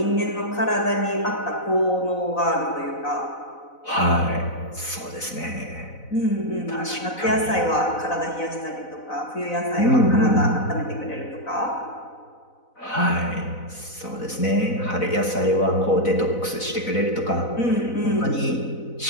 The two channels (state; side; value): late; right; 4.0 ms